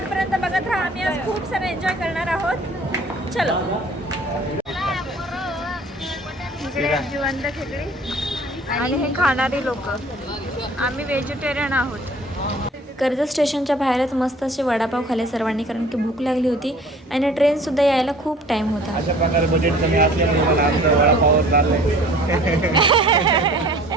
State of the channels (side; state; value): both; normal; correlation 0.50